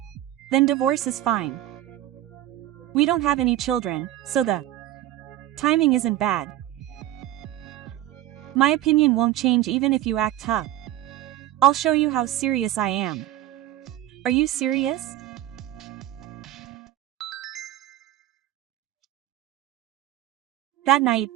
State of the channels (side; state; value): left; quieter; 13.9 dB